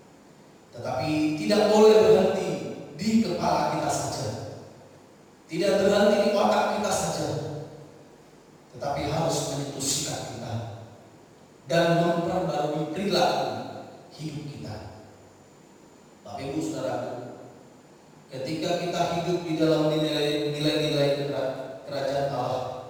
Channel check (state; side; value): identical; both; correlation 1.00